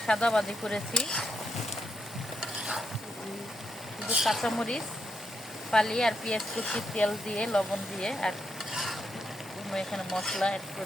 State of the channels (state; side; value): normal; both; correlation 0.80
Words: সাদা ভাজি করেছি, শুধু কাঁচামরিচ ফালি আর পেঁয়াজ কুচি, তেল দিয়ে লবণ দিয়ে, আর কোনো এখানে মশলা অ্যাড